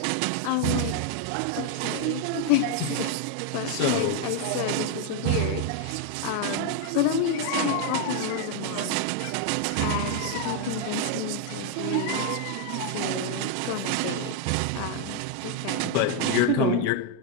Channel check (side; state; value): both; different; correlation 0.01